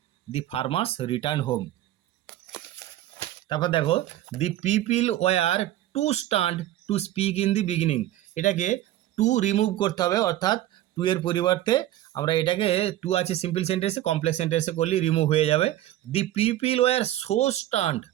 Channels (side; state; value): left; quieter; 13.9 dB